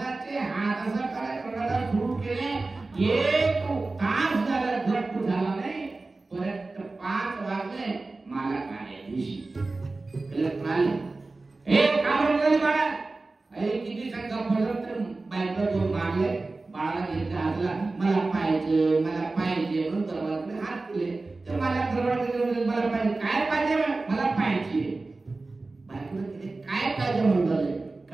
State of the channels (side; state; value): left; quieter; 3.4 dB